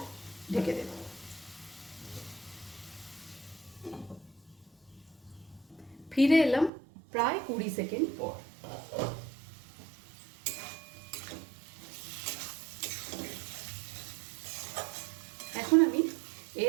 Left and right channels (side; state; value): left; drops out; at 6.7 s